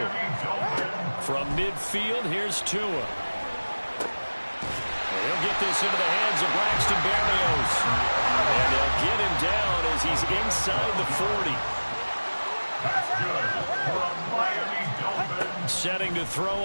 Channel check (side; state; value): both; inverted; correlation -1.00